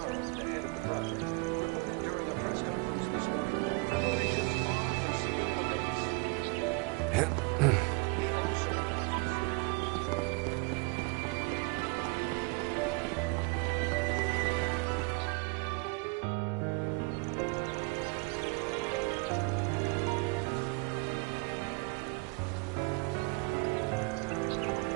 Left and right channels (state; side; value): quieter; left; 29.8 dB